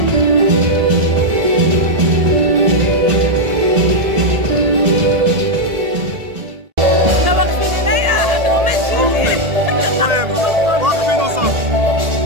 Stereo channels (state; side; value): late; left; 1.8 ms